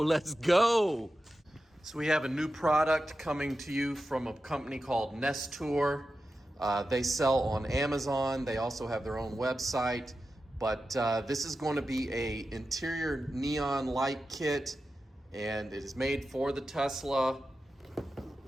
go. So we have a new product coming to you from a company called Nestour. They sell on Amazon. They also have their own website, but this is going to be a interior neon light kit, and it is made for the Tesla.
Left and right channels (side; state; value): both; normal; correlation 0.92